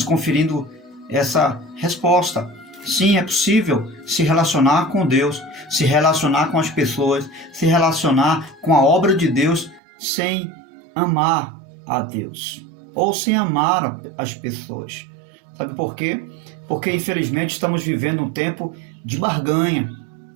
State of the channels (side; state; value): left; drops out; at 9.8 s